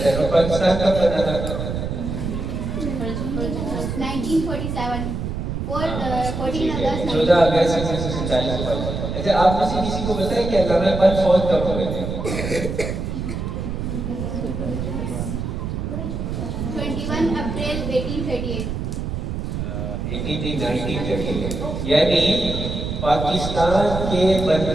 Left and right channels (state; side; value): noise; right; rumble, 4 dB below the sound